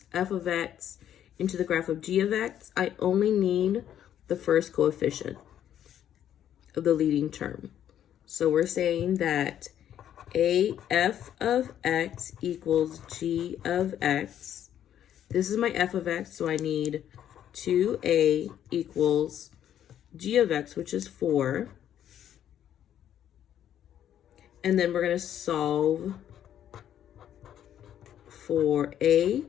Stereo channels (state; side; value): quieter; right; 10.5 dB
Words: f of x into the graph of g of x? I only need the first coefficient of the leading term. So we're saying that a f of x equals g of x. This is my f of x, so I need 2a equals g of x, which is 4. And then we're going to solve for a,